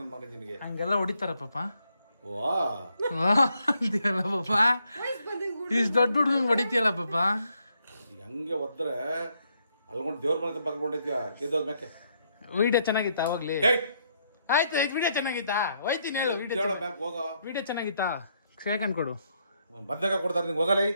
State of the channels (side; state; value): both; inverted; correlation -0.75